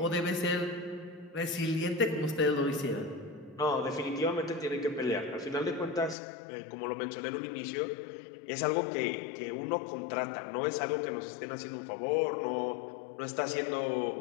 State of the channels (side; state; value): right; drops out; at 6.2 s